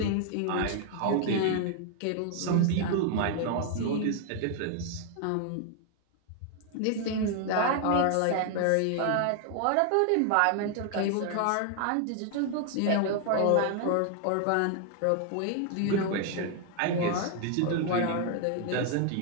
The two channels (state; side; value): different; both; correlation 0.00